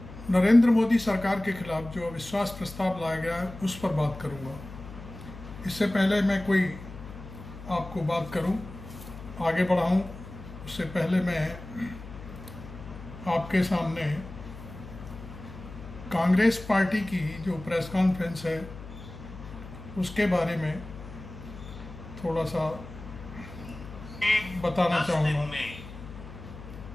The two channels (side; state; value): left; noise; hum, 14 dB below the sound